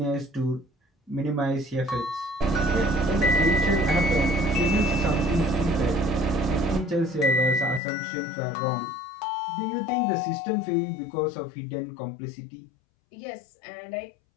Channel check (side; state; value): right; drops out; at 7.8 s